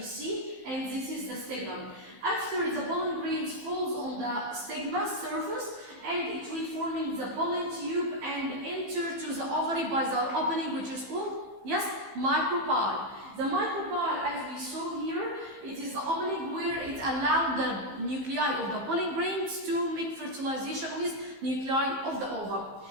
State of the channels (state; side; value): late; left; 15 ms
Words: see, and this is the stigma. After the pollen grains falls on the stigma surface, and it will forming the pollen tube and enter to the ovary by the opening, which is called, yes, micropyle. The micropyle, as we saw here, it is the opening where it allows the nuclei of the pollen grains to make fertilization with nuclei of the ova.